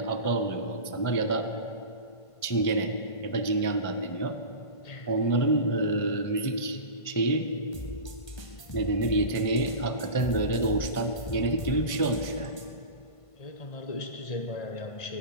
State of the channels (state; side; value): late; right; 1.5 ms